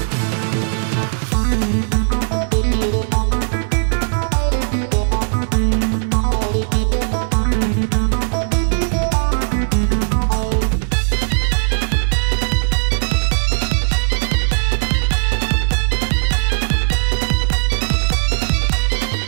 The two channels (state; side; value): silent; left; digital silence